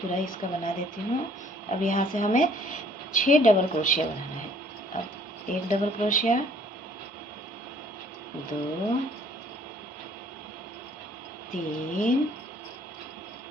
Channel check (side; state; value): both; normal; correlation 0.59